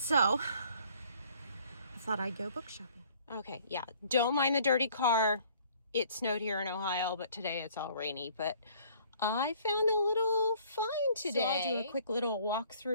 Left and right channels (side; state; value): both; inverted; correlation -0.57